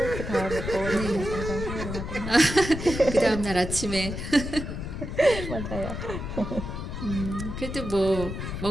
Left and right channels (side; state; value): left; noise; rumble, 6 dB below the sound